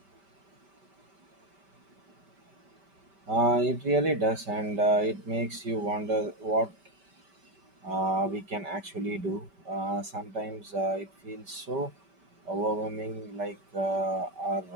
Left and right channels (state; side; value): late; left; 5.1 ms